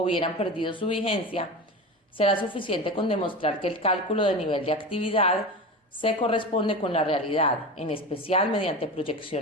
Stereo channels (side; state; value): both; normal; correlation 0.27